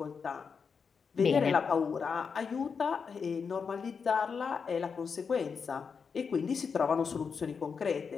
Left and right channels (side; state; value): right; quieter; 5.8 dB